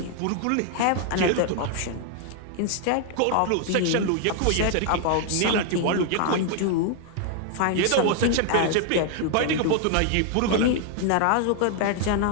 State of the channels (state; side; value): different; both; correlation 0.00